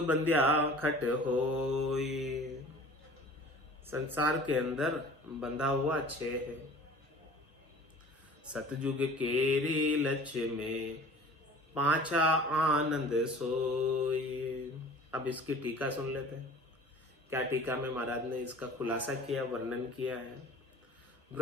बंध्या खट होय, संसार के अंदर बंधा हुआ 6 है। सतयुग केरी लक्ष्य में, पांचा आनंद सोय। अब इसकी टीका सुन लेते हैं। क्या टीका में महाराज ने इसका खुलासा किया, वर्णन किया है।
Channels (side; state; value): both; normal; correlation 0.44